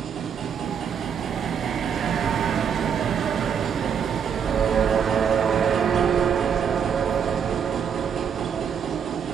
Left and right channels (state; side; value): quieter; left; 7.5 dB